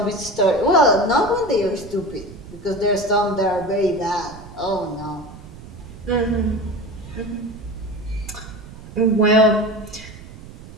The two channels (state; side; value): noise; right; rumble, 16 dB below the sound